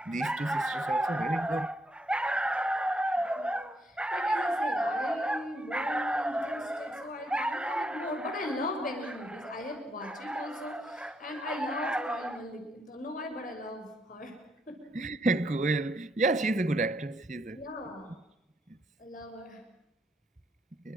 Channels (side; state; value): both; normal; correlation 0.75